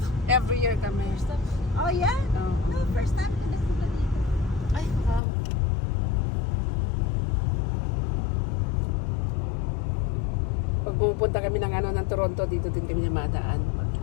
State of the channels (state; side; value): drops out; right; at 5.2 s